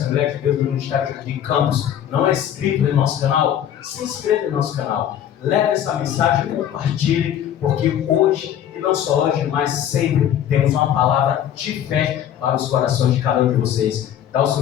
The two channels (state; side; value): quieter; right; 10.3 dB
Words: de Deus do Ministério Jardim Campos, não é inscrito em nosso canal? Se inscreva em nosso canal. Leve essa mensagem e compartilhe, porque hoje, e não só hoje, mas sempre, temos uma palavra de fé para os corações de cada um de vocês. Dá o